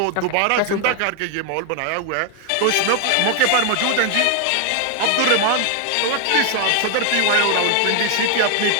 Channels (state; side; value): different; both; correlation 0.00